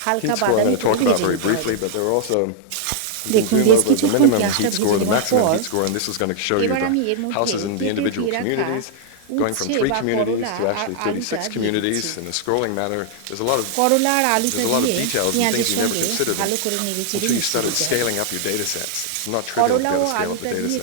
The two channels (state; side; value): different; both; correlation 0.00